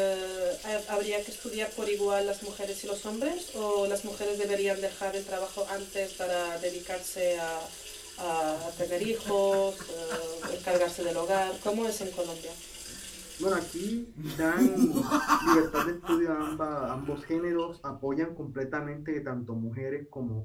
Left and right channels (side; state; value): both; identical; correlation 1.00